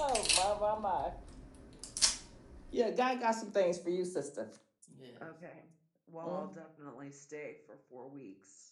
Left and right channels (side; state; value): both; identical; correlation 1.00